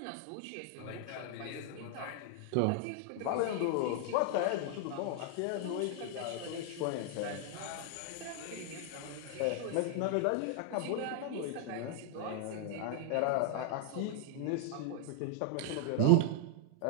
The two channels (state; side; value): different; both; correlation -0.01